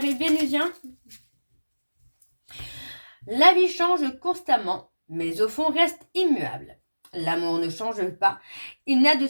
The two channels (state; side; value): inverted; both; correlation -1.00